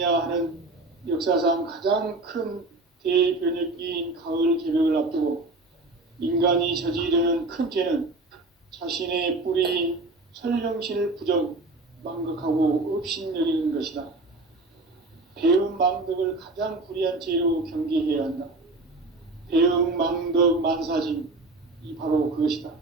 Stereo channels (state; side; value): quieter; left; 3.1 dB